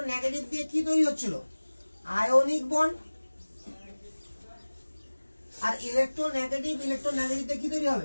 নেগেটিভ দিয়ে কি তৈরি হচ্ছিল? Ionic bond. আর ইলেকট্রো নেগেটিভ দিয়ে কি তৈরি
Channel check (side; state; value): both; inverted; correlation -1.00